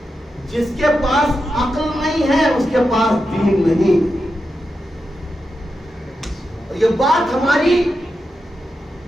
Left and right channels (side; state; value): both; normal; correlation 0.88